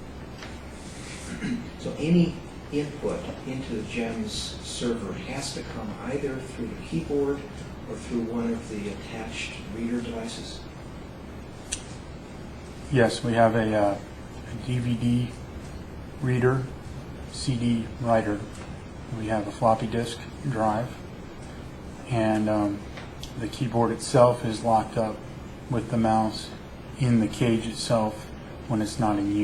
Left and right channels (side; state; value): both; identical; correlation 1.00